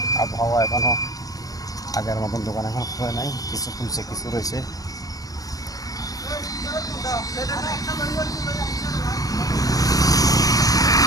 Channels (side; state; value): right; late; 0.17 ms